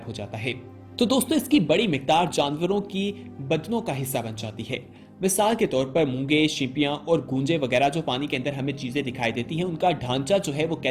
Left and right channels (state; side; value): identical; both; correlation 1.00